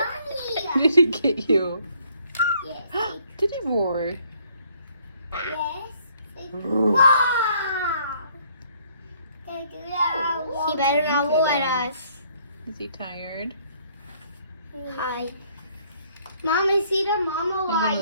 Did he get you? Yes. Did he roar? Yes. Wow. He better not look at us. Is he tired? Hi. Mom, I see the mama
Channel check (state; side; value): inverted; both; correlation -0.64